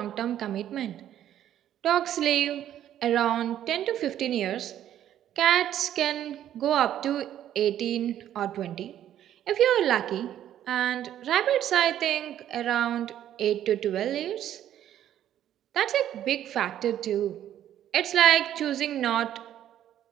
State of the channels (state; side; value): quieter; left; 11.3 dB